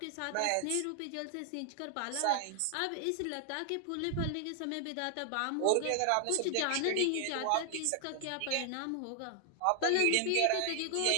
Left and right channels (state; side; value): different; both; correlation 0.00